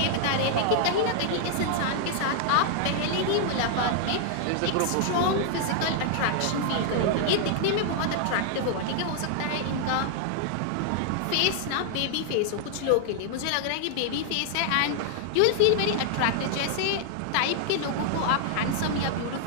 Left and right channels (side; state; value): both; different; correlation 0.00